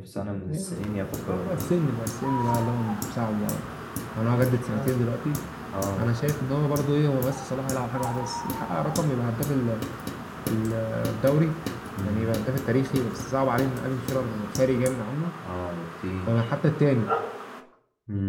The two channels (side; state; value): both; identical; correlation 1.00